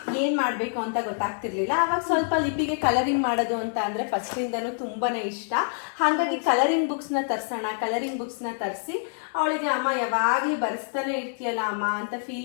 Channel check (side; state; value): right; silent; digital silence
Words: ಏನು ಮಾಡಬೇಕು ಅಂತ ಗೊತ್ತಾಗ್ತಿರ್ಲಿಲ್ಲ. ಆವಾಗ ಸ್ವಲ್ಪ ಲಿಪಿಗೆ ಕಲರಿಂಗ್ ಮಾಡೋದು ಅಂತ ಅಂದರೆ ಫಸ್ಟಿಂದನೂ ತುಂಬಾ ಇಷ್ಟ. ಹಾಗಾಗಿ ಕಲರಿಂಗ್ ಬುಕ್ಸ್ನ ತರಿಸಿ ಅವಳಿಗೆ ಅಮ್ಮ ಯಾವಾಗಲೂ ಬರೆಸ್ತಾನೆ ಇರ್ತೀಯಲ್ಲ ಅಮ್ಮ ಅಂತ